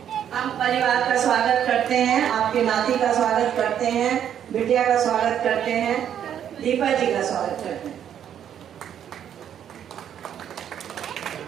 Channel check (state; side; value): quieter; left; 9.5 dB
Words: हम परिवार का स्वागत करते हैं, आपके नाती का स्वागत करते हैं, बिटिया का स्वागत करते हैं, दीपा जी का स्वागत करते हैं।